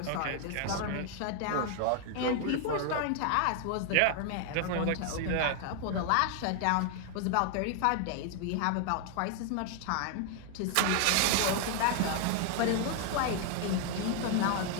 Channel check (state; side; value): different; both; correlation 0.00